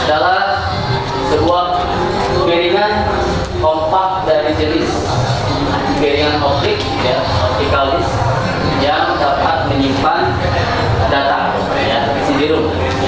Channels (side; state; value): both; identical; correlation 1.00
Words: adalah sebuah piringan kompak dari jenis piringan optik, ya, optical disk yang dapat menyimpan data, ya, CD-ROM,